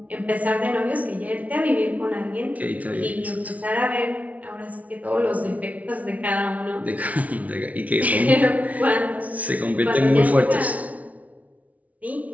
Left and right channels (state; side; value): late; left; 0.069 ms